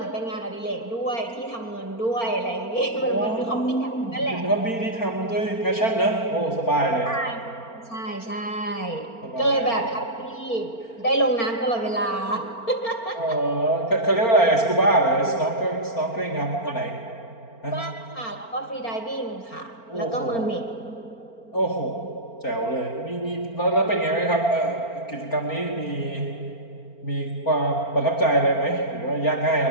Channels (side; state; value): right; late; 4.4 ms